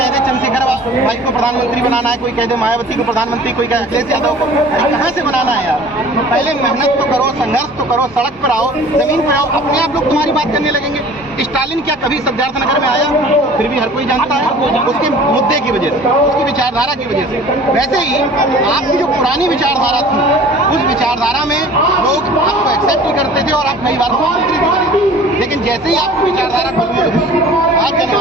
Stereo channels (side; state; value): both; normal; correlation 0.46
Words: दे चंद्रशेखर भाई को प्रधानमंत्री बनाना है, कोई कह दे मायावती को प्रधानमंत्री, कोई कह अखिलेश यादव को। कहाँ से बनाना है यार? पहले मेहनत तो करो, संघर्ष तो करो, सड़क पर आओ, जमीन पर आओ, अपने आप लोग तुम्हारी बात करने लगेंगे। स्टालिन क्या कभी सिद्धार्थनगर में आया? फिर भी हर कोई जानता है, उसके मुद्दे की वजह से, उसकी विचारधारा की वजह से। वैसे ही आपकी जो पुरानी विचारधारा थी, उस विचारधारा में लोग आपको एक्सेप्ट ही करते थे और आप कई बार मुख्यमंत्री भी बने। लेकिन जैसे ही आपकी विचारधारा बदली, आज